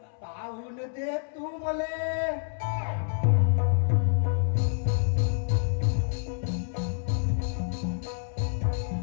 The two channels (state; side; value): silent; right; 59 dB below the other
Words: पाहून दे तू मले